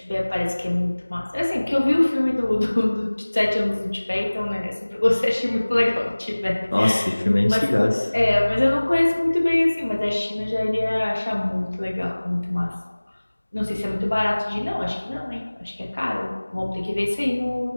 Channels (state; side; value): inverted; both; correlation -1.00